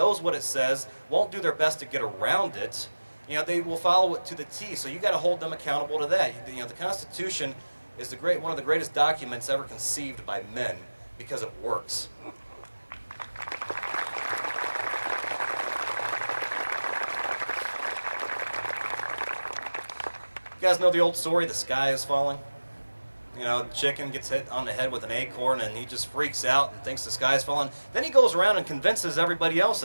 what it says, won't do their best to get around it. You know, they will follow it to the T, so you got to hold them accountable to that. You know, the Constitution is one of the greatest documents ever conceived by men because it works. You guys know the old story, the sky is falling? You know, the chicken gets hit on the head with an acorn and he just freaks out and thinks the sky is falling. Then he goes around and convinces everybody else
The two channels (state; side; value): inverted; both; correlation -1.00